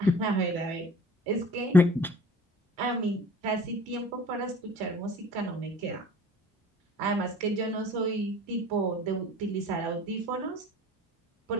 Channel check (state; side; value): normal; both; correlation 0.47